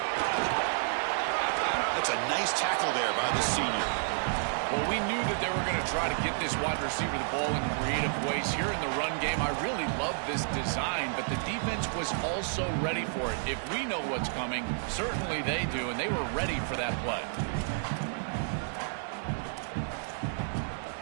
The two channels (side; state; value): left; silent; 57 dB below the other